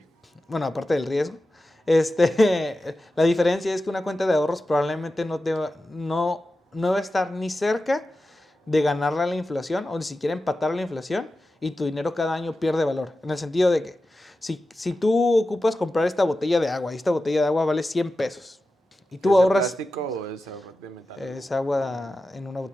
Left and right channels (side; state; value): both; normal; correlation 0.93